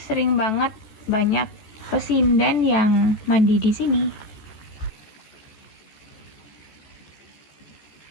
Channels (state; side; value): late; right; 14 ms